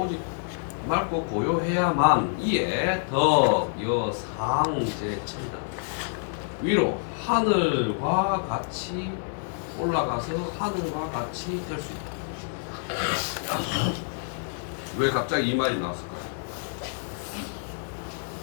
맑고 고요해야만 이에 덕여상제천이다. 위로 하늘과 같이 올라가서 하늘과 같이 될 수 있다. 왜 갑자기 이 말이 나왔을까요?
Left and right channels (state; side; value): silent; right; 60 dB below the other